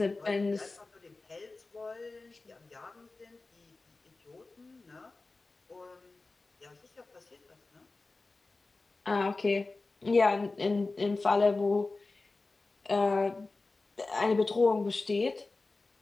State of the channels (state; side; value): quieter; right; 3.5 dB